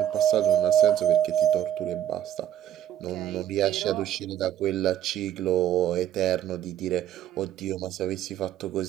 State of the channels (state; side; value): quieter; left; 11.2 dB